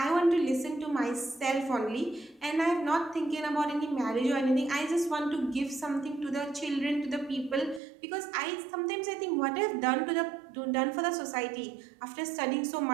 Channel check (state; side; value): drops out; left; at 7.8 s